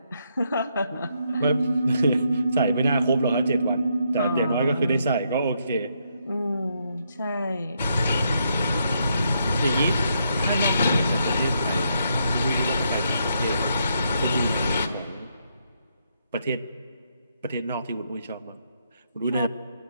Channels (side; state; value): both; inverted; correlation -0.77